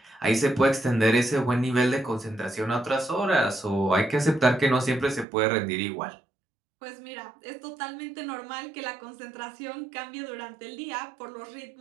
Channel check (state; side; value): drops out; left; at 5.2 s